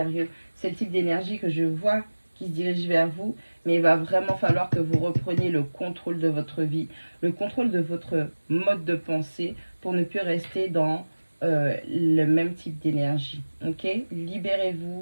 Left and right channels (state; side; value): inverted; both; correlation -1.00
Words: C'est le type d'énergie que je vois qui se dirige vers vous, mais il va vraiment falloir que vous repreniez le contrôle de votre vie, le contrôle de votre mode de pensée pour ne plus rester dans le même type d'énergie. Ok?